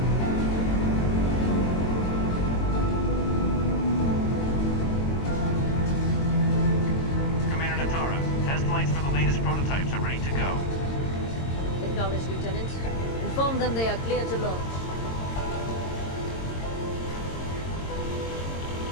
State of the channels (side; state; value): right; late; 22 ms